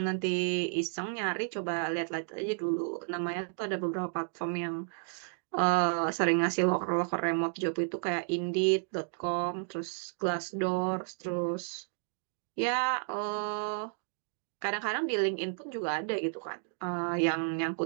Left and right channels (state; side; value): silent; left; digital silence